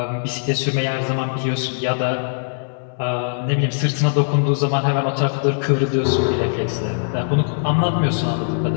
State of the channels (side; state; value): right; silent; digital silence